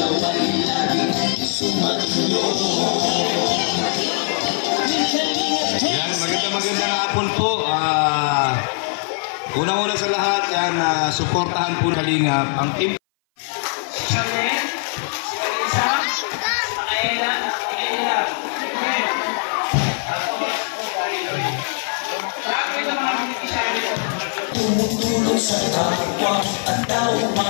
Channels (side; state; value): right; silent; 58 dB below the other